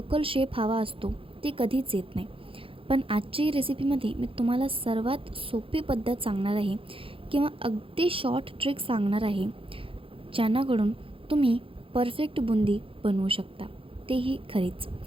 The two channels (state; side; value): late; left; 0.26 ms